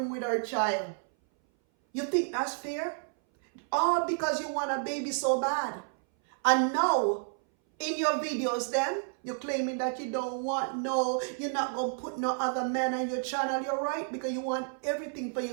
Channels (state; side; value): silent; left; 57 dB below the other